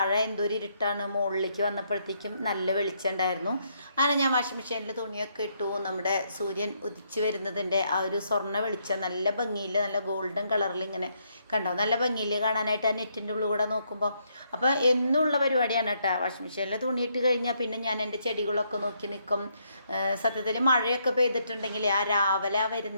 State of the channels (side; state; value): both; inverted; correlation -0.74